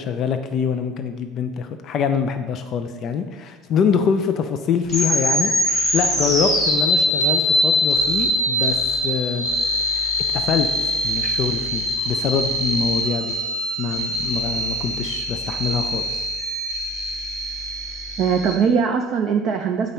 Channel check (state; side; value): normal; both; correlation 0.45